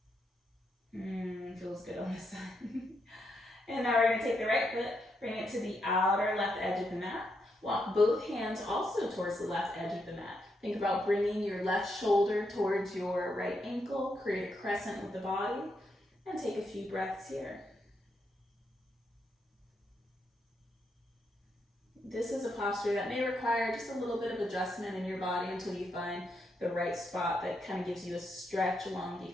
Feels good on this side. And now we're going to take the right foot, bring it to the outer left edge of the mat. Walk both hands also towards the left edge of the mat. Think about bringing your left shoulder towards your right ankle. Create a crescent with the body. And take a few breaths here. This is a posture that may require just a little bit of adjustment in your body until you find the right spot that kind of gives you a stretch along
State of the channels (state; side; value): normal; both; correlation 0.80